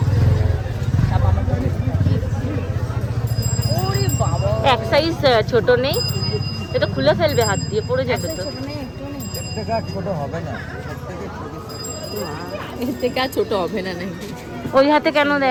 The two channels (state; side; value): identical; both; correlation 1.00